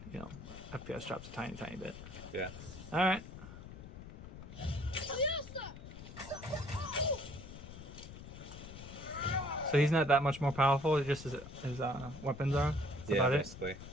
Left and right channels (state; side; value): noise; left; rumble, 13 dB below the sound